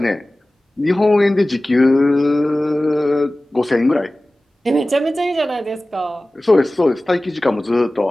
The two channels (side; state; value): both; normal; correlation 0.97